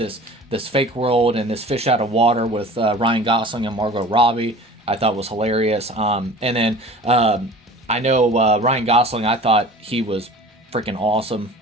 fake world and this fish out of water with Ryan Gosling and Margot Robbie, I thought was hilarious. And then I know Ryan Gosling, I thought he was freaking awesome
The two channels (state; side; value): normal; both; correlation 0.42